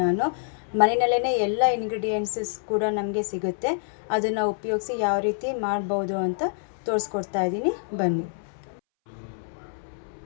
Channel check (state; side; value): silent; right; 61 dB below the other